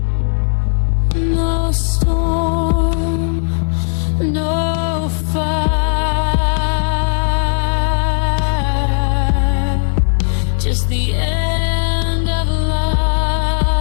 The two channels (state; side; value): silent; right; digital silence